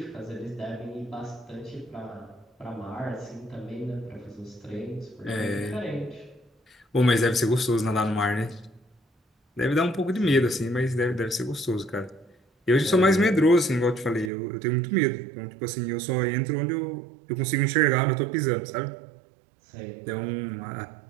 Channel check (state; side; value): drops out; left; at 14.3 s